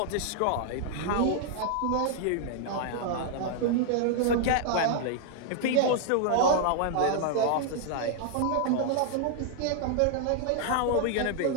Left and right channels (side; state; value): both; different; correlation -0.01